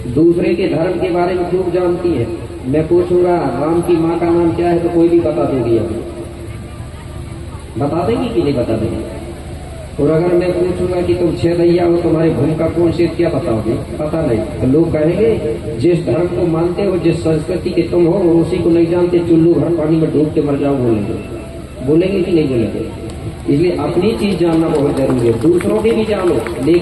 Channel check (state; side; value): identical; both; correlation 1.00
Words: दूसरे के धर्म के बारे में खूब जानती है। मैं पूछूंगा राम की माँ का नाम क्या है तो कोई भी बता दोगी, अभी बता देंगी कि नहीं बता देंगी? और अगर मैं पूछूंगा कि तुम 6 दैया हो, तुम्हारी भूमिका कौन सी, क्या बताओगे? पता नहीं। तो लोग कहेंगे जिस धर्म को मानते हो, जिस संस्कृति के तुम हो, और उसी को नहीं जानते, चुल्लू भर पानी में डूब के मर जाओ, बोलेंगे कि नहीं बोलेंगे? इसलिए अपनी चीज जानना बहुत जरूरी है, दूसरों की भी जानो,